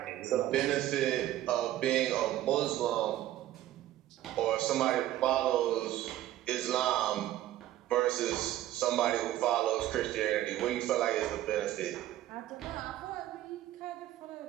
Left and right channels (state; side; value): quieter; left; 13.7 dB